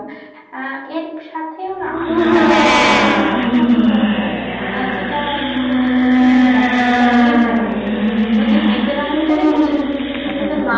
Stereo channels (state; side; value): identical; both; correlation 1.00